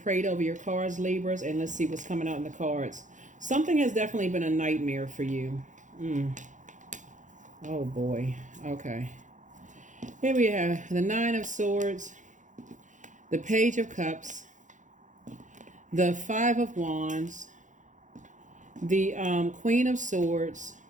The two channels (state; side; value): late; left; 0.36 ms